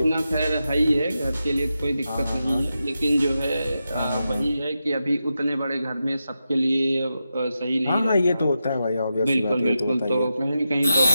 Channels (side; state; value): both; inverted; correlation -0.89